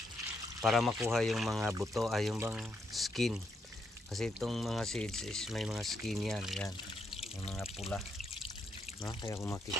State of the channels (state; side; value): normal; both; correlation 0.79